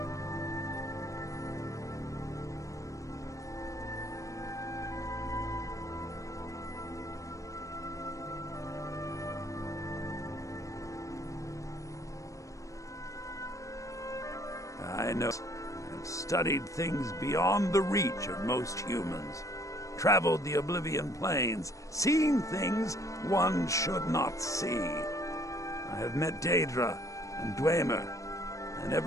I know. I've studied things beyond the reach of most humans, traveled the Oblivion Plains, seen things one should not see. I have met Daedra and Dwemer, and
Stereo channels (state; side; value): late; right; 0.16 ms